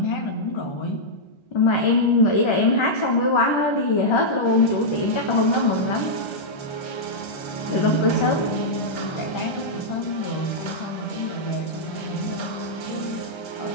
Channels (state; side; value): late; right; 1.3 ms